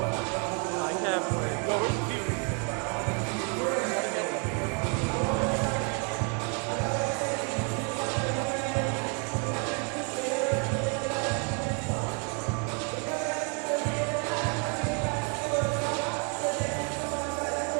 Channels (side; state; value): left; quieter; 37.6 dB